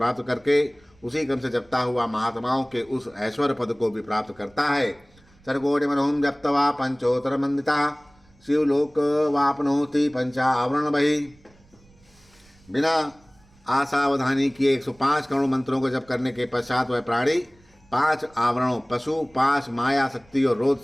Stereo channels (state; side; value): noise; right; rumble, 30 dB below the sound